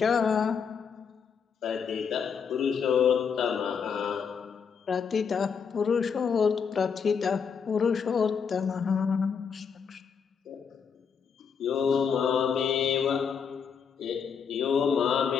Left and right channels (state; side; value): quieter; right; 6.5 dB